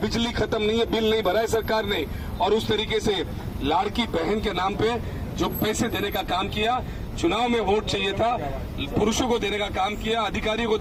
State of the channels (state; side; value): identical; both; correlation 1.00